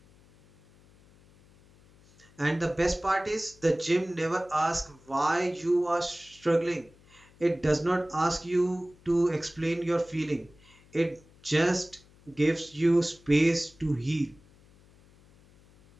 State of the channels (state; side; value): noise; left; hum, 27 dB below the sound